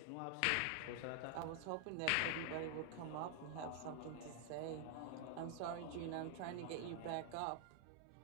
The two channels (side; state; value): both; different; correlation 0.00